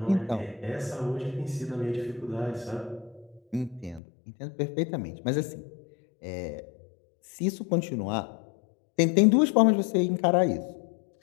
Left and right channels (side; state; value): right; drops out; at 4.0 s